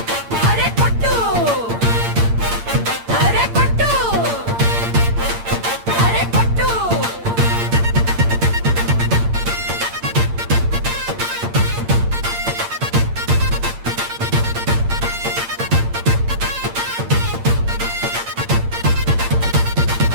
అరే కొట్టు అరే కొట్టు అరే కొట్టు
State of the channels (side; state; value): left; late; 8.7 ms